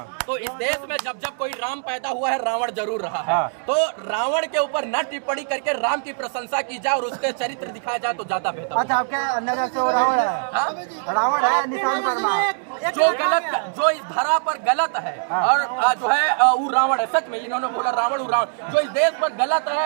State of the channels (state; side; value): silent; left; digital silence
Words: तो इस देश में जब जब कोई राम पैदा हुआ है, रावण जरूर रहा है। तो रावण के ऊपर न टिप्पणी करके राम की प्रशंसा की जाए और उसके चरित्र दिखाया जाए तो ज्यादा बेहतर। अच्छा, आपके नजर से वो रावण है? रावण है निशांत वर्मा, जो गलत, जो इस धरा पर गलत है और जो है वो रावण है। सच में इन्होंने बोला रावण, जो इस देश पर गलत